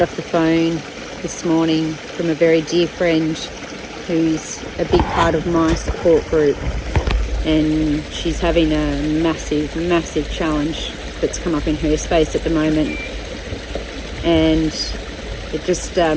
off the phone this morning from a very dear friend who's a big part of my support group, and she's having a massive challenge that's come up in her space at the moment, and it just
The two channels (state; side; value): identical; both; correlation 1.00